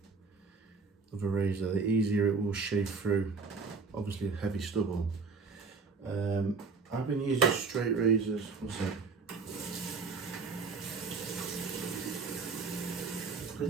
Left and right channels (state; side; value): quieter; left; 4.6 dB